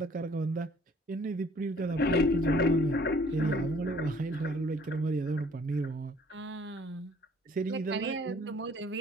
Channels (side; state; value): both; normal; correlation 0.57